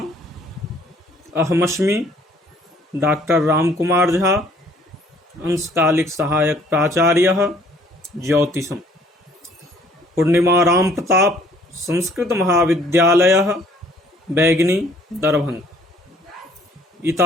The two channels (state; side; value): normal; both; correlation 0.59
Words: अहमस्मि डॉक्टर रामकुमार झा, अंशकालिक सहायक प्राचार्य ज्योतिषम, पूर्णिमा राम प्रताप संस्कृत महाविद्यालय बैगनी दरभंगा।